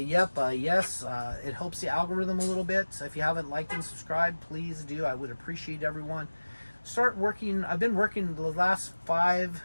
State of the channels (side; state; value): both; inverted; correlation -1.00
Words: helps the algorithm a little bit. So if you haven't liked and subscribed, please do. I would appreciate everyone. Start working. I've been working the last 5